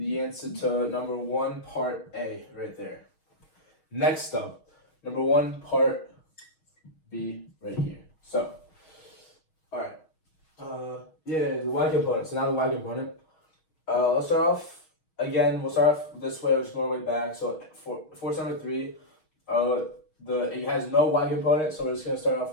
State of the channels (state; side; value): late; right; 6.4 ms